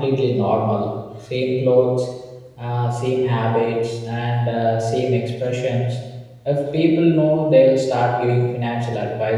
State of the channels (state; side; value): identical; both; correlation 1.00